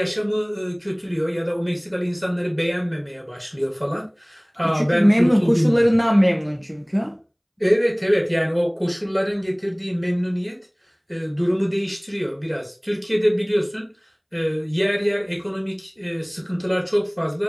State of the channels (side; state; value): both; identical; correlation 1.00